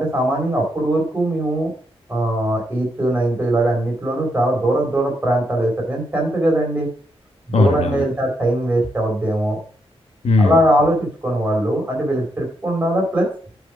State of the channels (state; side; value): normal; both; correlation 0.79